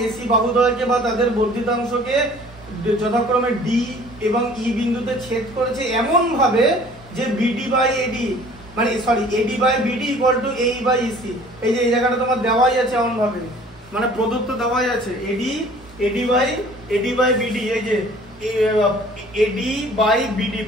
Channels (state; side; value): normal; both; correlation 0.51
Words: এসি বাহুদ্বয়কে বা তাদের বর্ধিতাংশকে যথাক্রমে ডি এবং ই বিন্দুতে ছেদ করেছে এমন ভাবে যে বিডি বাই এডি, মানে sorry AD by BD equal to AE by EC. এই যে এই জায়গাটা তোমার দেওয়াই আছে এমন ভাবে, মানে প্রদত্ত দেওয়াই আছে এডি বাই বিডি, এই যে এডি বাই বিডি